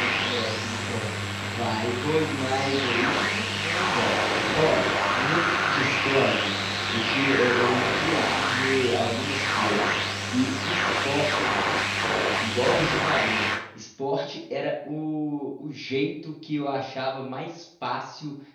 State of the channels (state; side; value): identical; both; correlation 1.00